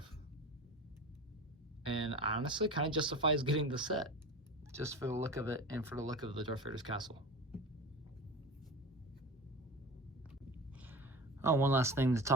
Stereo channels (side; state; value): both; normal; correlation 0.32